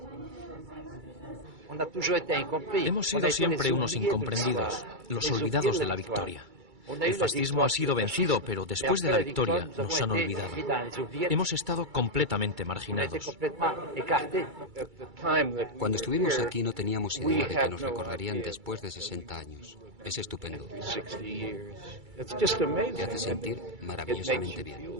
Hemos sido siempre unos incomprendidos, los olvidados de la victoria. El fascismo ha sido vencido, pero después de la victoria nos han olvidado. Hemos estado completamente marginados. Cuando estuvimos aquí no teníamos idea de que nos recordarían después de 60 años. Es estupendo. Te hace sentir maravillosamente bien.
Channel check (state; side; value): late; left; 2.3 ms